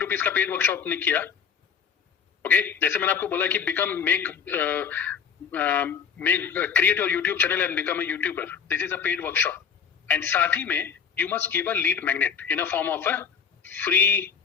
का paid workshop ने किया. Okay, जैसे मैंने आपको बोला कि create your YouTube channel and become a YouTuber. This is a paid workshop. And साथ ही में you must give a lead magnet in a form of a free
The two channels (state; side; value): quieter; right; 6.8 dB